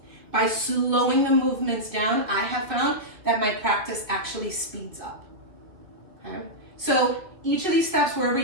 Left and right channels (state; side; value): late; left; 2.2 ms